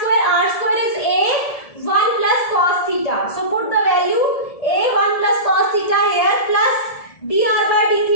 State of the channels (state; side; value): late; right; 1.7 ms